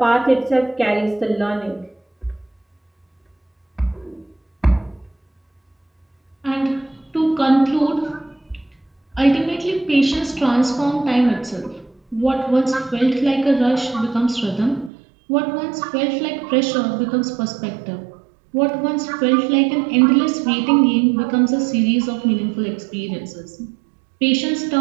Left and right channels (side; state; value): left; drops out; at 14.9 s